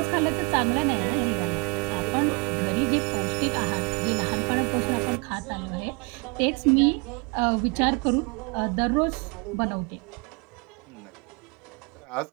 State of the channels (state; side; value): quieter; left; 31.4 dB